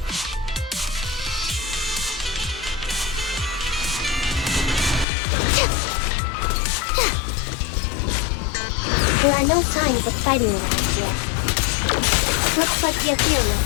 There are no signs of fighting around here. Looks like the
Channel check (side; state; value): right; drops out; at 5.1 s